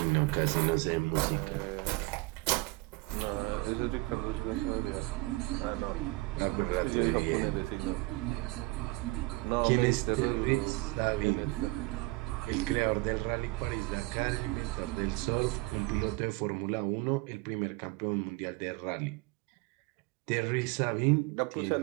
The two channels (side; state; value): left; quieter; 23.2 dB